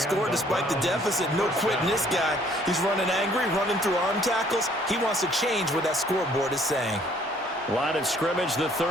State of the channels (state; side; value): normal; both; correlation 0.61